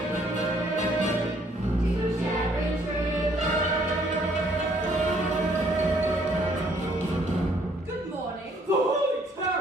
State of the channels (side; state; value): both; normal; correlation 0.64